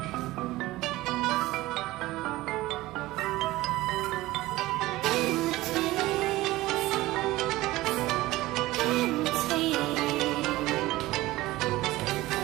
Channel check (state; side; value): quieter; left; 18.1 dB